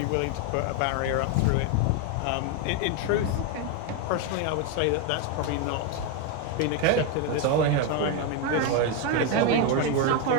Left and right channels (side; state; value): both; different; correlation 0.01